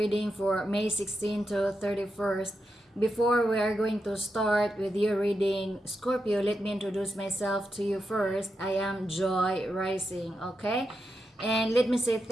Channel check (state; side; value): normal; both; correlation 0.86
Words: for May 16 to 31st. Before we are going to start with your reading, Scorpio, let me introduce myself to you first. I am Joy Rising, okay? And let me say